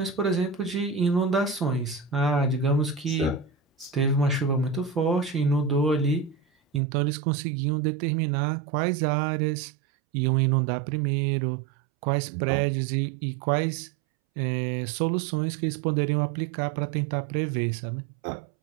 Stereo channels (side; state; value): left; drops out; at 6.8 s